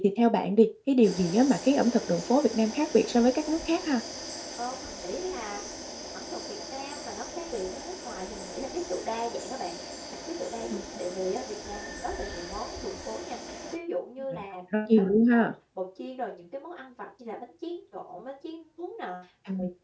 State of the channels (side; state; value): both; identical; correlation 1.00